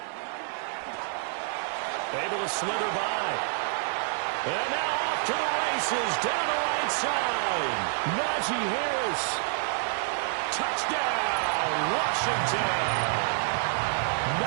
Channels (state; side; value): silent; left; digital silence